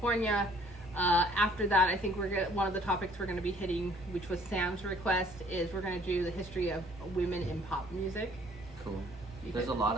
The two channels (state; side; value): normal; both; correlation 0.58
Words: After that, I think one of the topics we're going to be hitting, which was Sam's request, is we're going to do the history of women in pop music. Cool. There's a lot